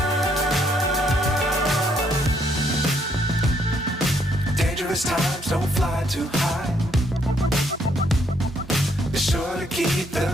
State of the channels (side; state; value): both; normal; correlation 0.71